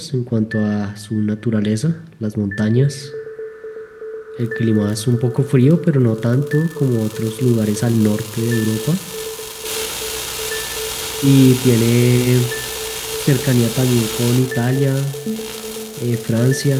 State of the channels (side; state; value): both; identical; correlation 1.00